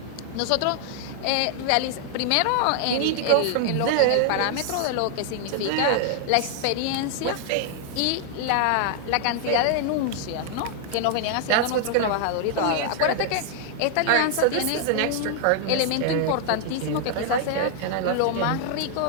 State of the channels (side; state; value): both; different; correlation 0.00